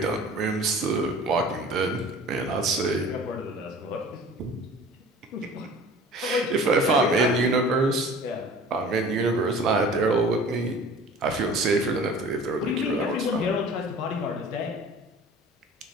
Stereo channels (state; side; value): normal; both; correlation 0.44